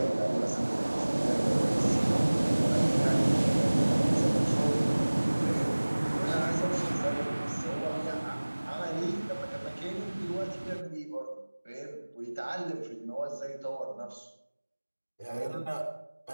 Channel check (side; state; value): both; inverted; correlation -1.00